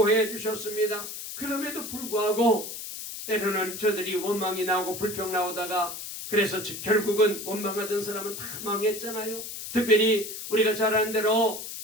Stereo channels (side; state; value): left; noise; hiss, 8 dB below the sound